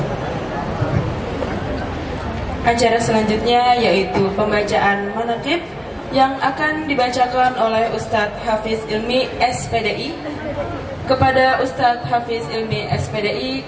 Acara selanjutnya yaitu pembacaan manaqib yang akan dibacakan oleh Ustadz Hafiz Ilmi SPDI. Kepada Ustadz Hafiz Ilmi SPDI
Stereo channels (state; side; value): identical; both; correlation 1.00